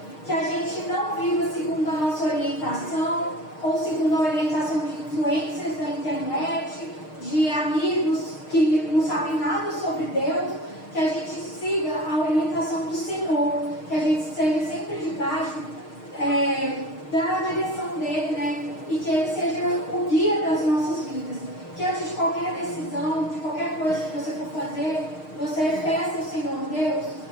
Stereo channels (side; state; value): right; late; 6.5 ms